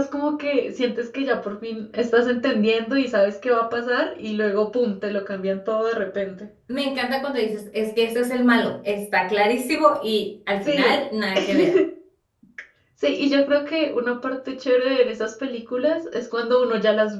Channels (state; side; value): identical; both; correlation 1.00